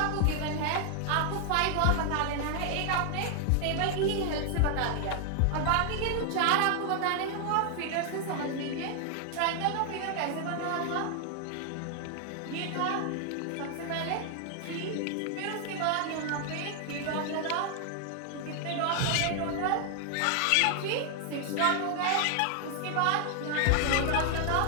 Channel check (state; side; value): different; both; correlation 0.00